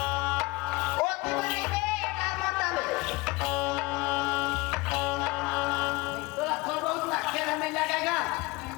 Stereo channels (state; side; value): quieter; right; 23.1 dB